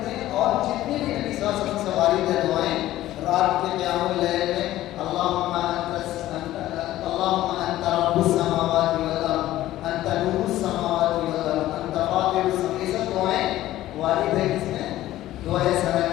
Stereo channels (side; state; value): right; quieter; 14.7 dB